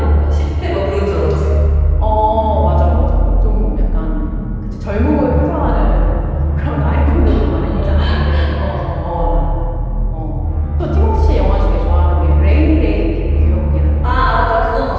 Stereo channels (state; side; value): identical; both; correlation 1.00